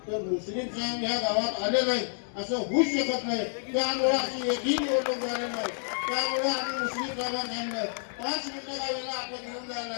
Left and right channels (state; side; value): silent; right; digital silence